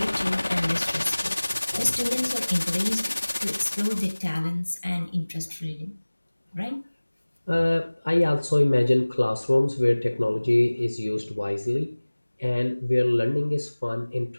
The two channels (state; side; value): inverted; both; correlation -1.00